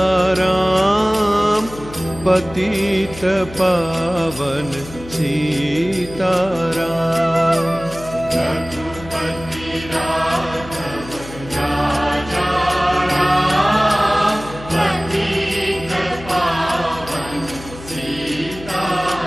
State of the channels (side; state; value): left; noise; hum, 15 dB below the sound